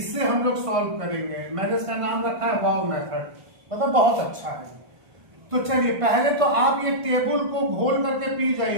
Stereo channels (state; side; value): late; left; 1.5 ms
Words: हम लोग सॉल्व करेंगे। मैंने इसका नाम रखा है वाव मेथड, मतलब बहुत अच्छा है। तो चलिए पहले तो आप ये टेबल को घोल करके पी